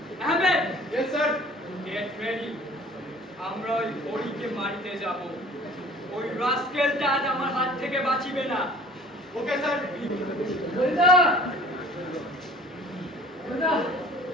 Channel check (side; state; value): both; normal; correlation 0.48